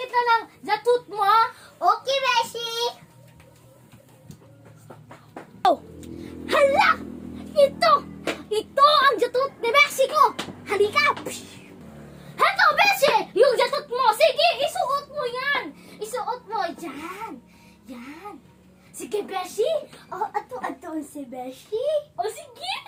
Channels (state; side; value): identical; both; correlation 1.00